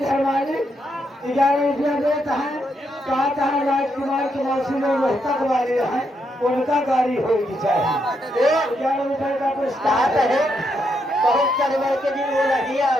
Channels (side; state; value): both; normal; correlation 0.79